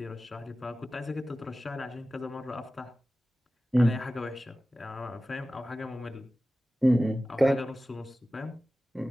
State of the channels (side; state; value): both; normal; correlation 0.96